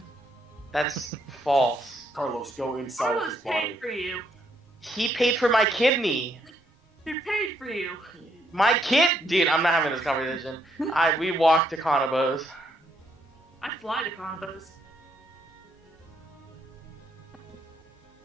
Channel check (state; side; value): normal; both; correlation 0.73